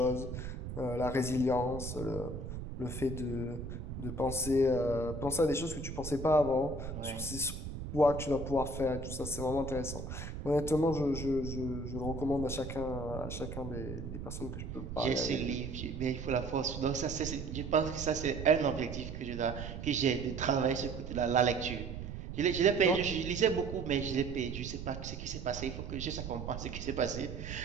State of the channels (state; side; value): noise; right; rumble, 7 dB below the sound